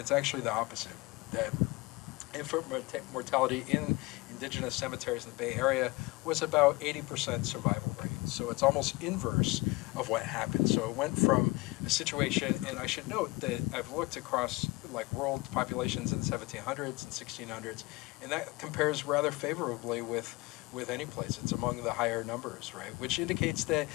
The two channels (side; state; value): right; quieter; 23.0 dB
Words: actually the opposite, that infant mortality in indigenous cemeteries in the Bay Area was about 80% survival rate. So it's almost inverse of what happened. So it went from a situation, and I should note that I've looked across like world populations in the 1700s and 1600s, and that compares rather favorably with any place. It's among the higher numbers, right? Which indicates that